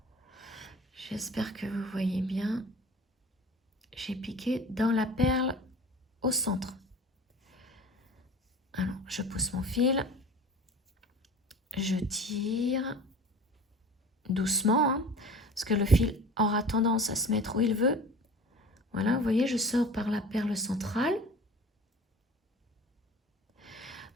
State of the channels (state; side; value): normal; both; correlation 0.40